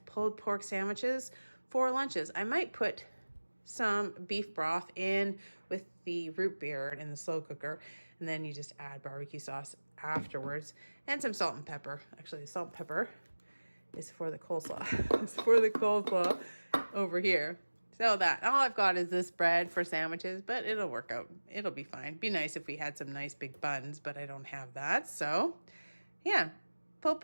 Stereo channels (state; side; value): inverted; both; correlation -1.00